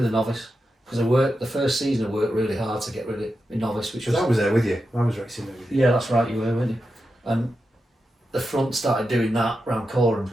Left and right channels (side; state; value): both; normal; correlation 0.89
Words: the novice because the first season I worked really hard to get rid of the novice, which was. I was there with you. I was racing there with you. Yeah, that's right. You were, weren't you? And the front started doing that round Corums